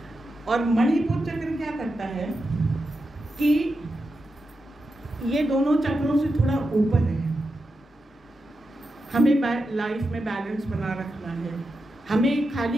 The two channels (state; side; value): normal; both; correlation 0.89